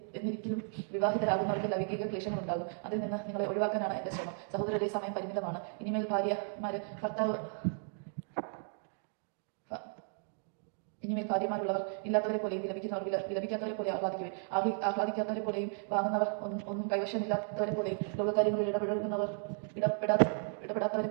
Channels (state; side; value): silent; left; 55 dB below the other